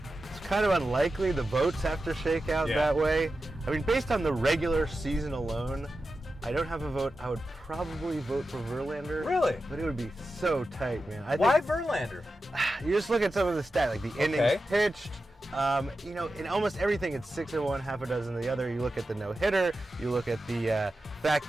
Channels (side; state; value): both; normal; correlation 0.92